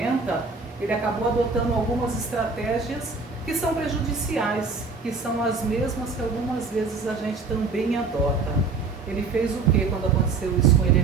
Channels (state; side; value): quieter; left; 4.3 dB